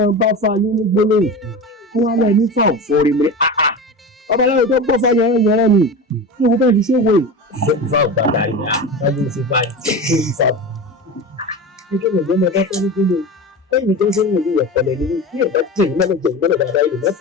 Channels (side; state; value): both; normal; correlation 0.28